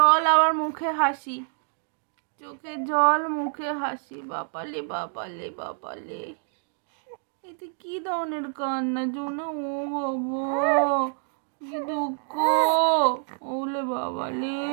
আবার মুখে হাসি, চোখে জল মুখে হাসি। বাপালে বাপালে বাপালে, এতে কি ধরনের কান্না জোনা? ও বাবা কি দুঃখ। ওলে বাবালে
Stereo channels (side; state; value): left; silent; 59 dB below the other